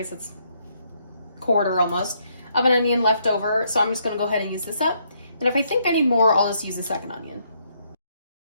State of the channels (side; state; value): both; inverted; correlation -0.73